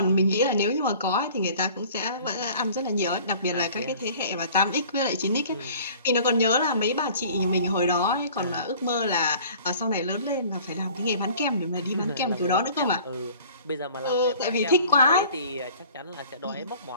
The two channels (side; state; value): both; inverted; correlation -0.48